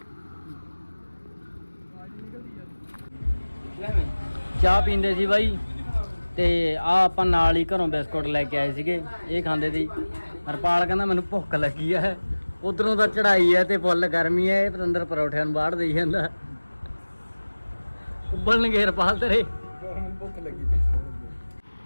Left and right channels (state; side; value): inverted; both; correlation -1.00